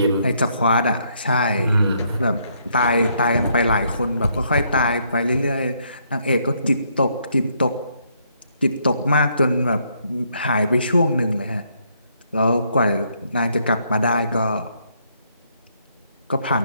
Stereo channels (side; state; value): both; inverted; correlation -0.72